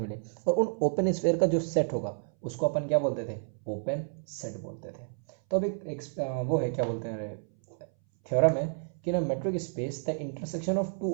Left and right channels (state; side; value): silent; left; 58 dB below the other